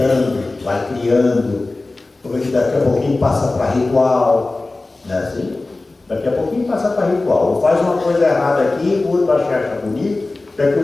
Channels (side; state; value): right; quieter; 3.2 dB